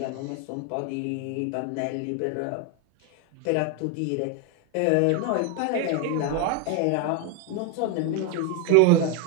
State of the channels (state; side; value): different; both; correlation 0.01